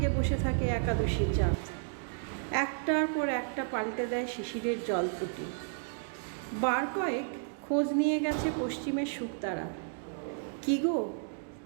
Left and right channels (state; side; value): silent; left; digital silence